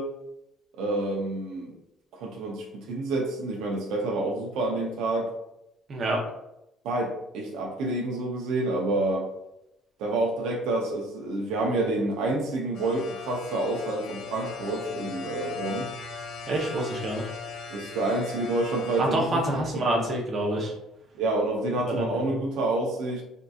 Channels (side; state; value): both; normal; correlation 0.50